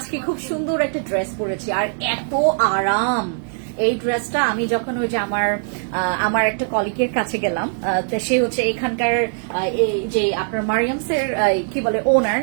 খুব সুন্দর একটা ড্রেস পরেছি আর এত আরাম এই ড্রেসটা। আমি যখন ওই যে আমার একটা কলিগের কাছে গেলাম, তো সে হচ্ছে এখানকার এই যে আপনার মারিয়ামসের কি বলে ওনার,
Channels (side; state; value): left; silent; 64 dB below the other